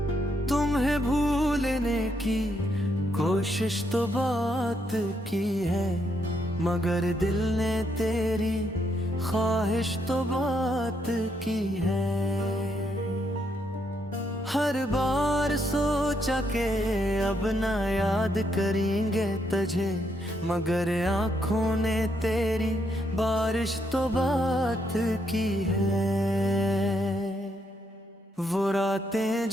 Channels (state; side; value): normal; both; correlation 0.76